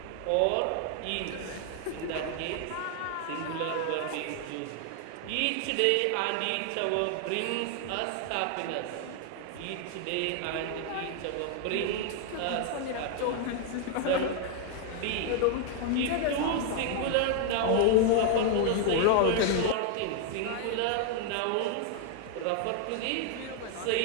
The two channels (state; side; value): different; both; correlation 0.00